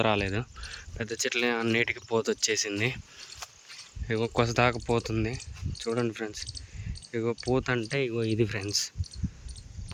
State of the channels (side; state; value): both; identical; correlation 1.00